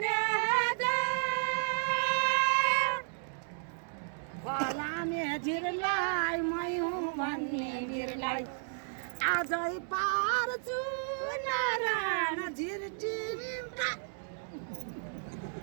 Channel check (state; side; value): silent; left; digital silence